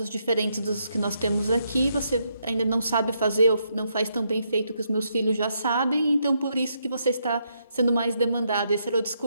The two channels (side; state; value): both; inverted; correlation -0.78